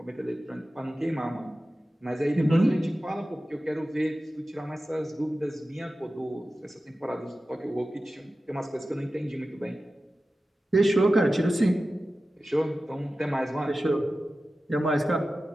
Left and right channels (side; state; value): both; normal; correlation 0.94